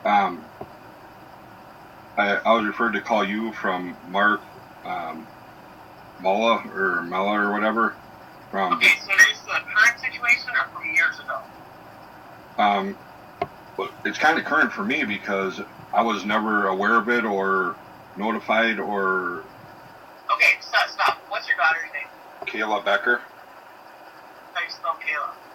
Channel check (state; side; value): identical; both; correlation 1.00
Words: I was referred to call you from Mark Paula or Mella or whatever. Okay, so is this a current situation or from years ago? Well, it's kind of current for me because I was never aware of it or notified or... Okay, stop. What's your daughter's name? Kayla Becker. How do you spell Kayla?